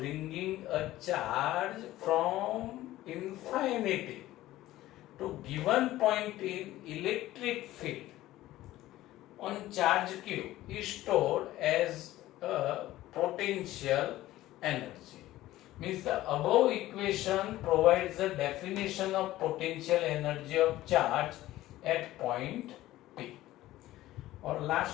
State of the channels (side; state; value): right; quieter; 15.6 dB